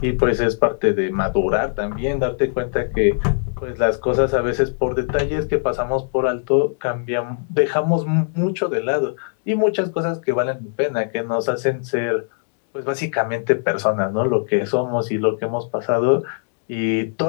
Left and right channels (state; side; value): silent; right; digital silence